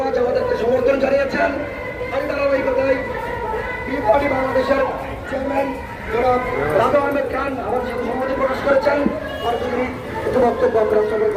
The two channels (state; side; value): identical; both; correlation 1.00